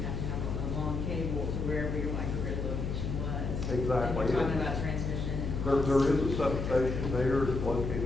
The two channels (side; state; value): left; noise; hum, 2 dB below the sound